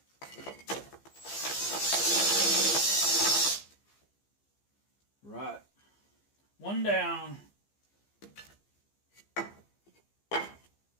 Right. One down.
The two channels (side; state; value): right; late; 15 ms